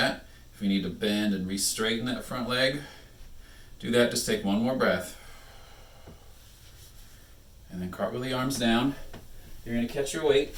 If you need to bend and re-straighten that front leg, do that. Just take one more breath. And then cartwheel the arms down. You're going to catch your weight.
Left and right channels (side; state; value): both; identical; correlation 1.00